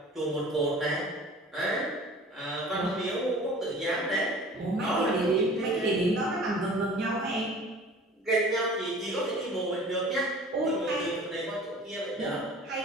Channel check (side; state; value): both; normal; correlation 0.44